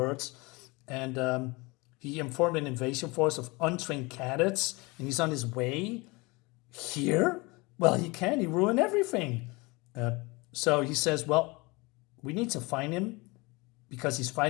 and he informed an invasion force of untrained cadets, and he's on his way here? Well, he ruined everything. So he says, well, we need to find him, because he's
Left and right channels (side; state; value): right; quieter; 25.3 dB